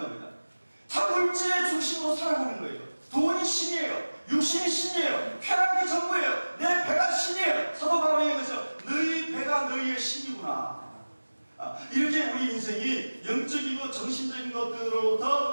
겁니다. 다 물질의 중심으로 몸이 신이에요. 육신이 신이에요. 쾌락이 전부예요. 내 배가 신이에요. 사도 바울이 얘기해서 너희 배가 너희의 신이구나. 이렇게 우리 인생이 영적이고 정신적인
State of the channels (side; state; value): both; inverted; correlation -1.00